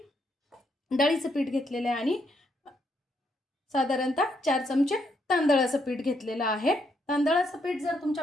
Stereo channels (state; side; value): normal; both; correlation 0.75